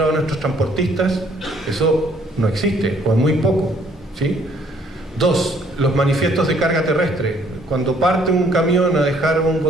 a nuestros transportistas, eso no existe, o es muy poco, ¿sí? 2, los manifiestos de carga terrestre. Cuando parte un camión a dejar un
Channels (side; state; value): both; normal; correlation 0.63